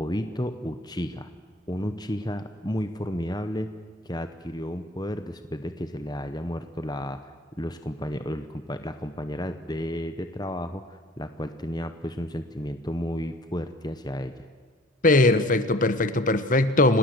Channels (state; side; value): normal; both; correlation 0.50